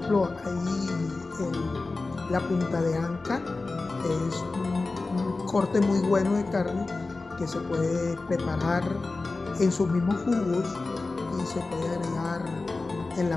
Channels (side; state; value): right; quieter; 3.6 dB